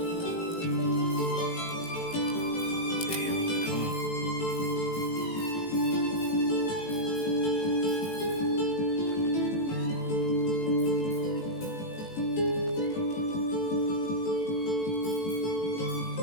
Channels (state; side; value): late; right; 18 ms